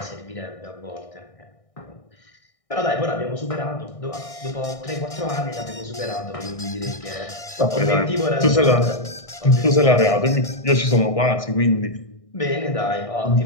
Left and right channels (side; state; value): right; late; 1.6 ms